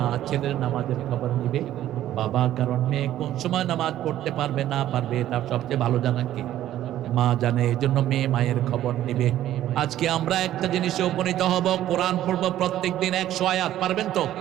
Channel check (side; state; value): left; quieter; 12.8 dB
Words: ছেলের নামাজের খবর নিবে বাবা। কারণ মেয়ে কোন সময় নামাজ পড়তে পারবে না পারবে, এটা সবচেয়ে ভালো জানা কে? মা জানে। এই জন্য মেয়ে মায়ের খবর নিবে। আজকে আমরা একটা জিনিসে উপনীত হব, কোরআন পড়বো প্রত্যেক দিন 100 আয়াত। পারবেন তো?